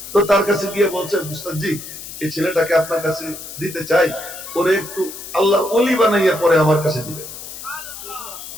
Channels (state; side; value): noise; left; hiss, 11 dB below the sound